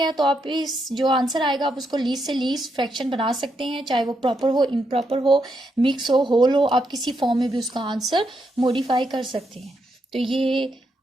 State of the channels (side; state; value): both; normal; correlation 0.80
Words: तो आप इस जो आंसर आएगा आप उसको लीस्ट से लीस्ट फ्रैक्शन बना सकते हैं, चाहे वो प्रॉपर हो, इम्प्रॉपर हो, मिक्स हो, होल हो, आप किसी फॉर्म में भी उसका आंसर मॉडिफाई कर सकते हैं। तो ये